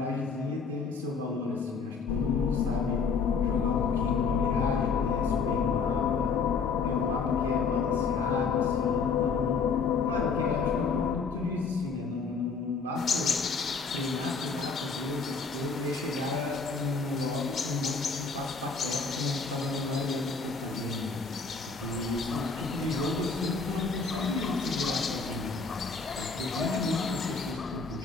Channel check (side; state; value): right; quieter; 4.9 dB